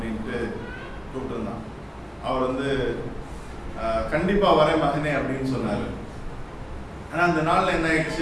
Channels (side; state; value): both; identical; correlation 1.00